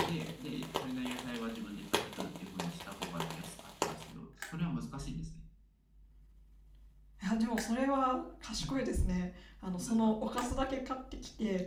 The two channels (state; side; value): identical; both; correlation 1.00